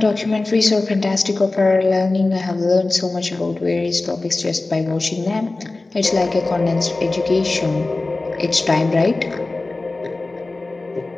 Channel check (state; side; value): quieter; right; 3.2 dB